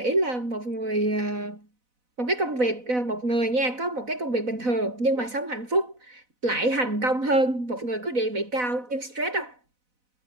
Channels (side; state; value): left; late; 4.0 ms